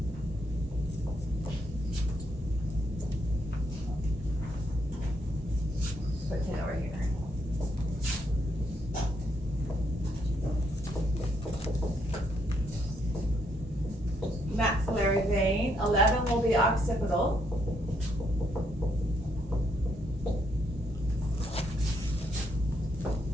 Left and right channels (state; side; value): normal; both; correlation 0.75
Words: put 10 over here. Maxillary vein. 11 will be occipital.